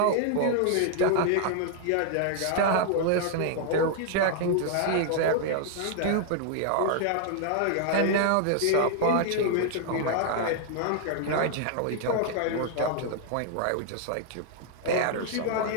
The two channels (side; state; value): both; different; correlation 0.00